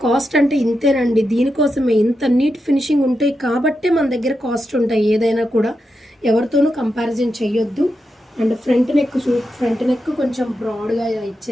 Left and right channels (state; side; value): normal; both; correlation 0.87